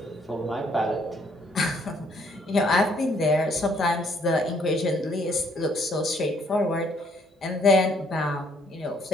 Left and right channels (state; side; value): normal; both; correlation 0.66